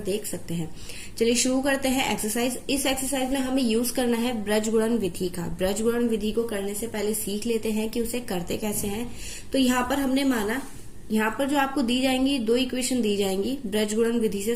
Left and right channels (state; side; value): identical; both; correlation 1.00